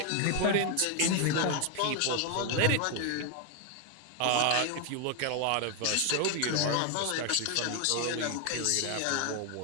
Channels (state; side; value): different; both; correlation 0.01